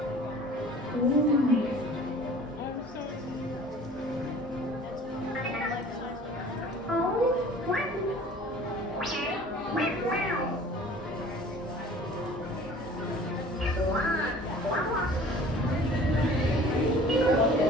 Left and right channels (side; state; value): both; normal; correlation 0.47